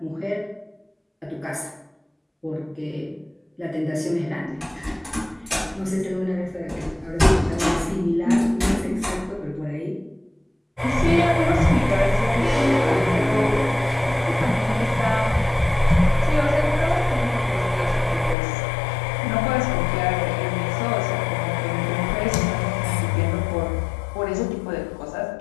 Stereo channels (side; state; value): right; drops out; at 18.4 s